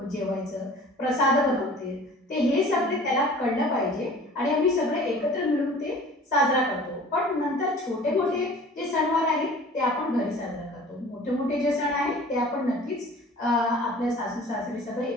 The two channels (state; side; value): normal; both; correlation 0.45